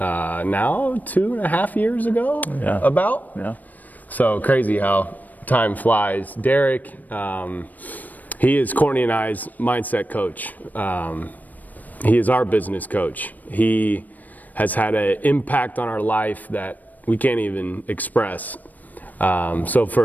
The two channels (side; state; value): right; late; 0.082 ms